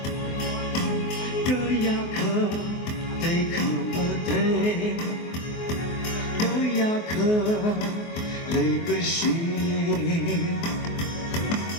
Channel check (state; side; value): late; right; 24 ms